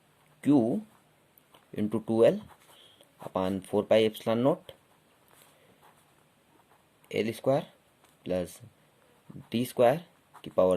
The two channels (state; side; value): identical; both; correlation 1.00